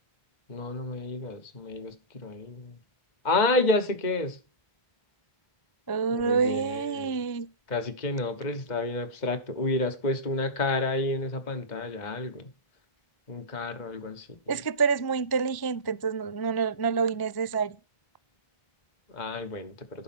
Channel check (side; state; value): right; late; 1.1 ms